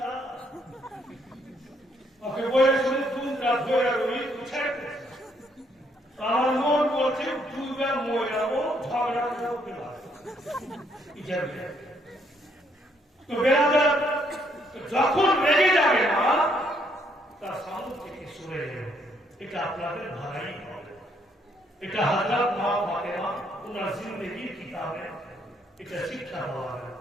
ওকে বলে শুনে দুটা ধরে রই তুই ছেড়ে। আমার মন বলছে দুইবার মরে যাবো, ঝগড়া করতে পারবো। তো বেড়াদার যখন রেগে যাবে না তার সামনে থেকে সরে যাবে, এটা আপনাদের ভাড়াই হবে। এটা হযরত মা ফাতেমা ওনার জিন্দেগির কিতাবে এটা শিক্ষা দেওয়া হয়।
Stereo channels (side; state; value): both; normal; correlation 0.71